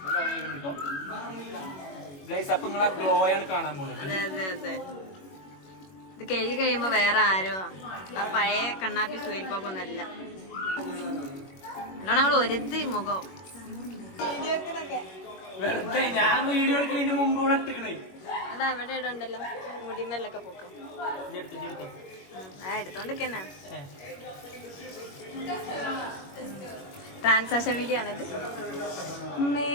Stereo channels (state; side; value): late; right; 21 ms